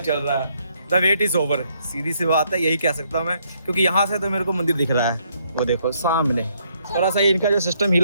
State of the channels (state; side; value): inverted; both; correlation -0.71